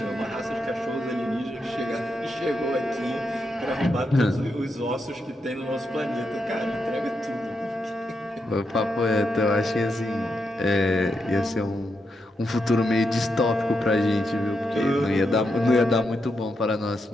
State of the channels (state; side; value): normal; both; correlation 0.83